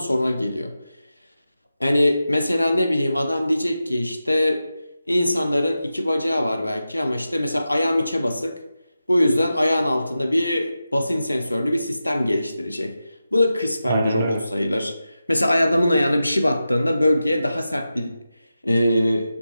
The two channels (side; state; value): both; inverted; correlation -0.92